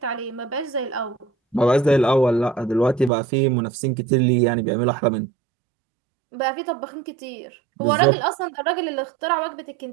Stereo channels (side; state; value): left; drops out; at 3.1 s